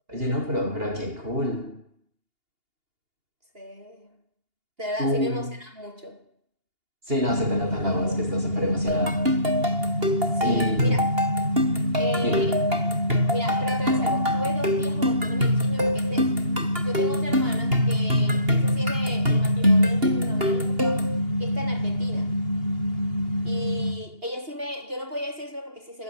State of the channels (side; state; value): left; late; 2.8 ms